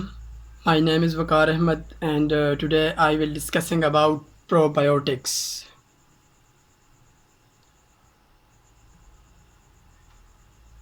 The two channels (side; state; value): both; identical; correlation 1.00